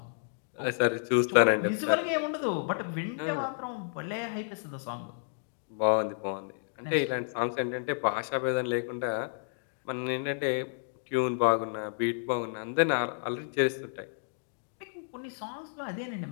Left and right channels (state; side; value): silent; right; digital silence